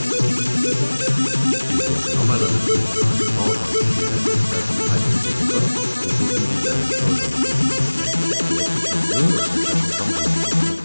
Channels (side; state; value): both; inverted; correlation -1.00